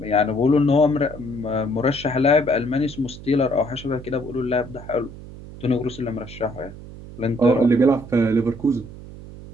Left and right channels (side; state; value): right; noise; hum, 15 dB below the sound